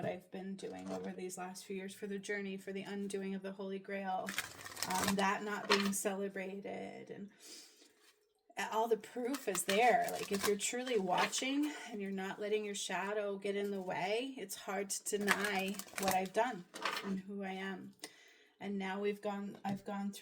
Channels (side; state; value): both; identical; correlation 1.00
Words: I've been doing over these last few years, for the journey, for the undoing of the Holy Grail, that not being celebrated, and all the proof is there. Like, if you're truly watching and you're not letting your shadow get in the way, it's hard to deny what I've done and who I am. And now I've gone